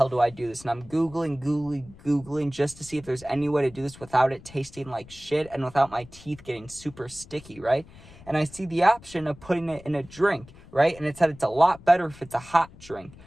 do I do this? And I'm Googling just to see if there's any way to do this without it tasting like shit and without my teeth getting super sticky, right? And I see the option of putting it in a drink, right? And it said it's a lot better if it's a hot drink.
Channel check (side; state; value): left; noise; rumble, 21 dB below the sound